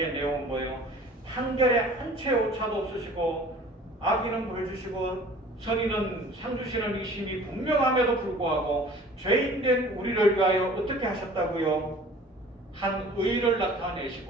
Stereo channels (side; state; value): both; normal; correlation 0.47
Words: 내용은 뭐예요? 판결에 한치의 오차도 없으시고 악인은 벌 주시고 선인은 상 주시는 이 심이 분명함에도 불구하고 죄인된 우리를 위하여 어떻게 하셨다고요? 한 의를